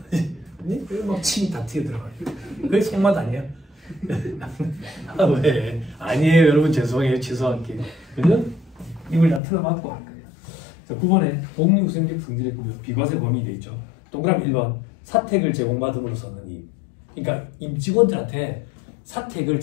그리고 막 침이 다 튀어들어가지고. 그게 속맛 아니야? 아, 왜? 아니에요 여러분, 죄송해요. 죄송할게. 그죠? 입을 다 틀어막고 할 거예요. 자, 9번에 공유생적 성질의 구조 비과세 범위 돼 있죠. 동그라미 1번 사택을 제공받음으로써는 이, 그러니까 임직원들한테 사택을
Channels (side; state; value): right; drops out; at 9.4 s